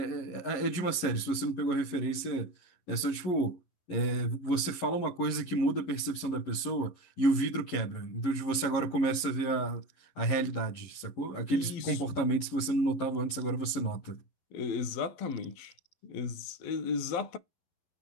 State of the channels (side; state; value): right; late; 11 ms